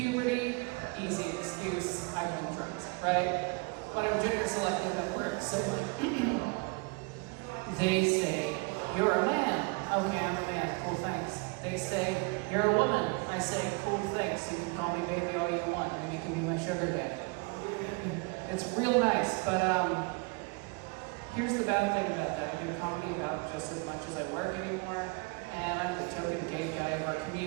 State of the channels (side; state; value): left; quieter; 29.3 dB